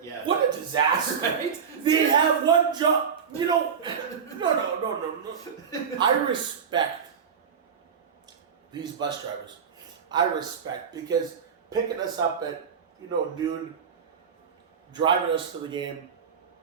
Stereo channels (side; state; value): left; quieter; 6.9 dB